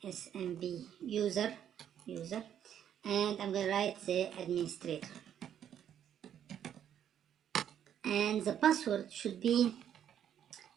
SMB user, and I'm gonna write the administrator. And the password should be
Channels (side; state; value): left; quieter; 9.7 dB